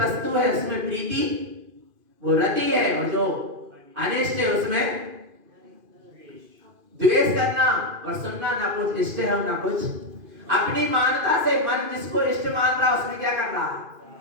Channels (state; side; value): late; left; 2.5 ms